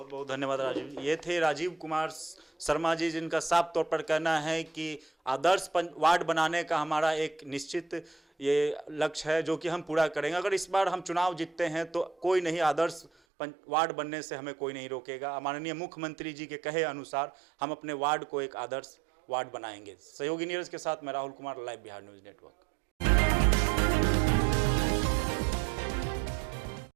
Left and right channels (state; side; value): drops out; left; at 13.1 s